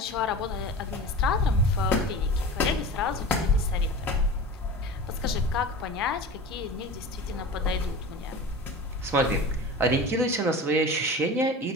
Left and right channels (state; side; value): normal; both; correlation 0.33